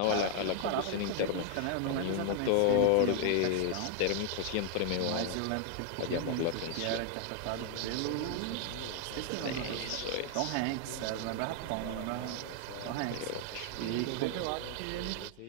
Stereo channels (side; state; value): both; different; correlation 0.00